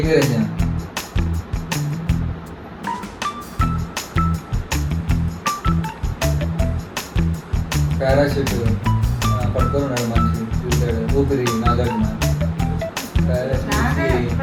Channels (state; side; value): identical; both; correlation 1.00